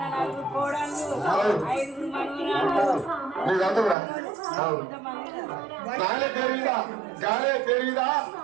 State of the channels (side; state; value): left; drops out; at 4.0 s